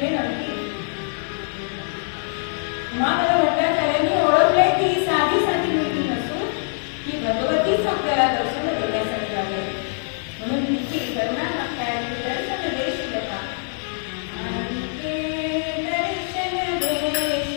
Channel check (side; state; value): right; silent; 63 dB below the other